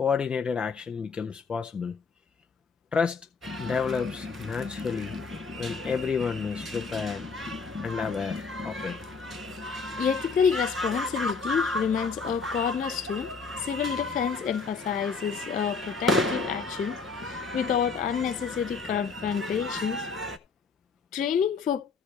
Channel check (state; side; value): quieter; right; 5.1 dB